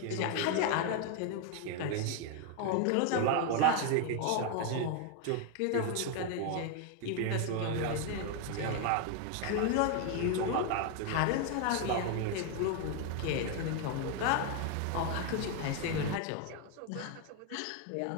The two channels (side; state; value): both; different; correlation 0.01